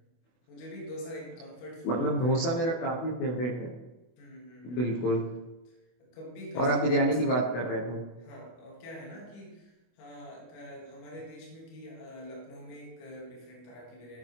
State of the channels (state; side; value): late; right; 24 ms